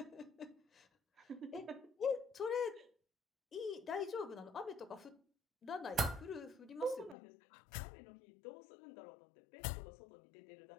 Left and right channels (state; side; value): drops out; right; at 7.2 s